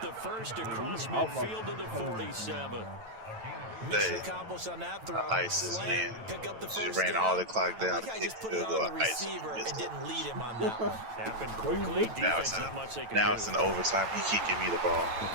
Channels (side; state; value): left; late; 9.0 ms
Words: first across midfield to the 47. Mission accomplished on that throw. ISIS, man. Pick up the Just first ran down. all the clock down. I like how he just put it on the receiver and didn't lead him on that one. Happened quickly. Defense, not much they can do. Now it's in overtime. He keep giving me the ball. A